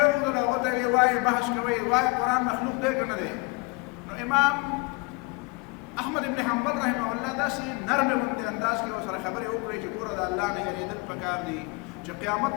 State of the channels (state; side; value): quieter; right; 27.7 dB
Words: راوغوښتل. هغه ته یې وایي بحث کوئ، وایي قرآن مخلوق دی که نه دی؟ نو امام احمد ابن حنبل رحمه الله داسې نرمه غوندې انداز کې ورسره خبرې وکړې چې ګوره د الله نه یېرېدل پکار دي چې قیامت